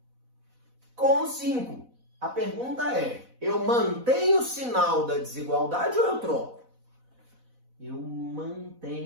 com 5. A pergunta é, eu mantenho o sinal da desigualdade ou eu troco? Eu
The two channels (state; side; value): late; left; 4.0 ms